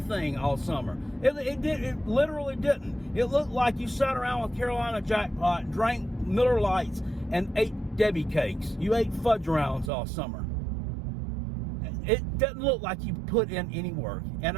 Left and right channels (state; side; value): drops out; left; at 9.9 s